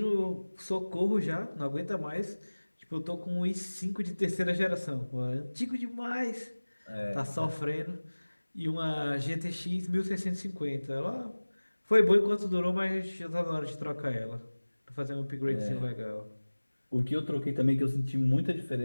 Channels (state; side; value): inverted; both; correlation -1.00